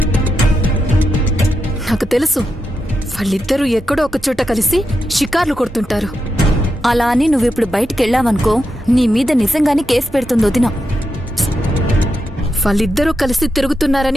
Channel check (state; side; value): normal; both; correlation 0.86